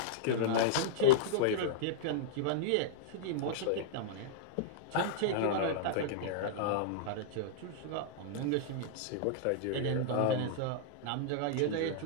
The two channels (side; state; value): both; different; correlation -0.02